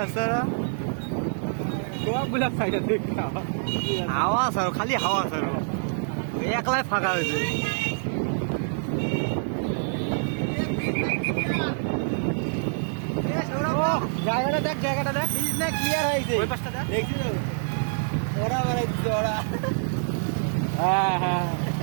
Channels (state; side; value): silent; left; 61 dB below the other